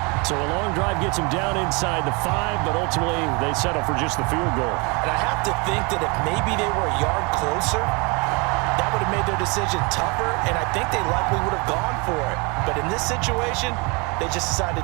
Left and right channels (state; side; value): quieter; left; 29.9 dB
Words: So a long drive gets him down inside the 5, but ultimately they settle for just the field goal. And I have to think that if maybe they were a yard closer, that would have made their decision tougher, and I think they likely would have gone for it. But in this situation, they just